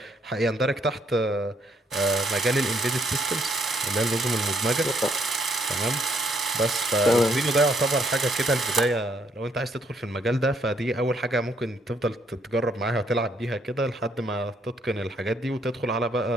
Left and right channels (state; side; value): normal; both; correlation 0.70